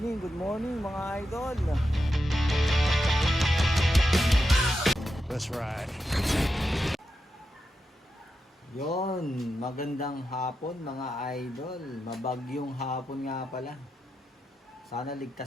mga idol. That's right. Yon, magandang hapon mga idol. Mabagyong hapon nga pala. Sana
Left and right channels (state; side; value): normal; both; correlation 0.87